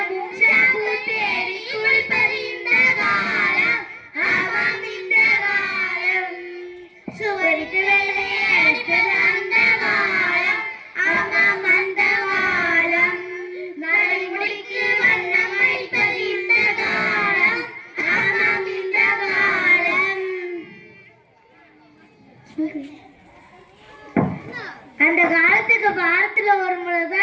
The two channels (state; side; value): identical; both; correlation 1.00